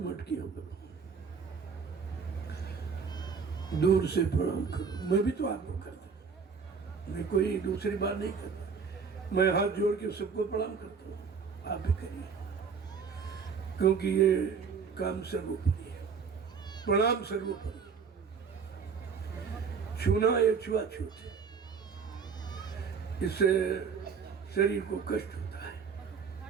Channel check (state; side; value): quieter; left; 5.8 dB